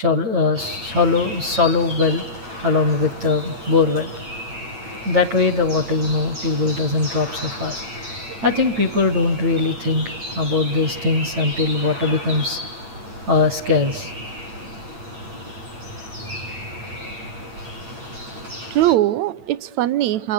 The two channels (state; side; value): late; left; 9.0 ms